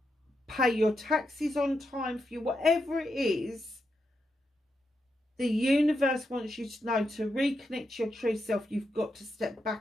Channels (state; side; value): normal; both; correlation 0.84